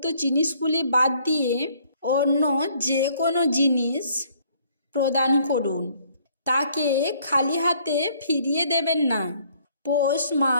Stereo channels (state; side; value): inverted; both; correlation -0.62